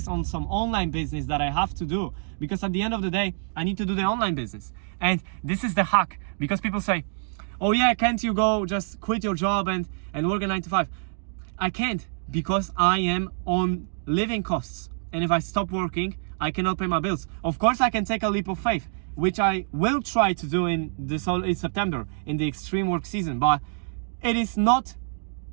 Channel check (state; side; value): silent; left; digital silence